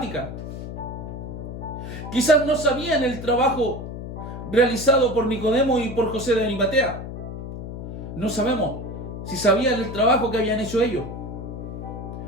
Quizás no sabían el trabajo realizado por Nicodemo y por José de Arimatea. No sabemos si sabían el trabajo que habían hecho ellos.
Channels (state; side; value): noise; left; hum, 8 dB below the sound